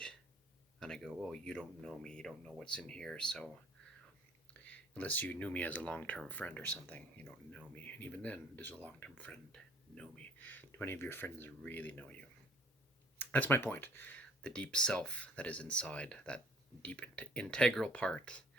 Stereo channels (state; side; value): normal; both; correlation 0.57